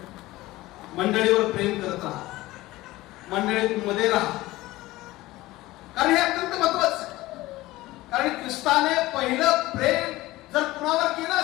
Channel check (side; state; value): right; quieter; 18.3 dB